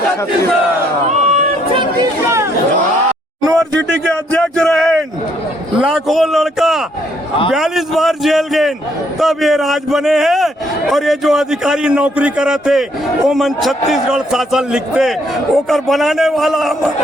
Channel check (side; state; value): both; normal; correlation 0.69